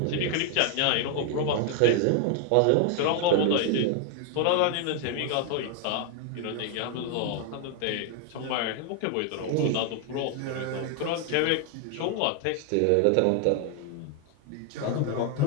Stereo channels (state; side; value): different; both; correlation 0.00